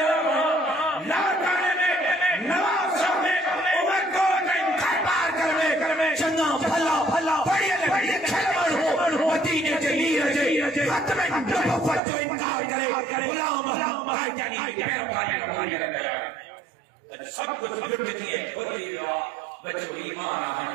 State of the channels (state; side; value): drops out; left; at 12.0 s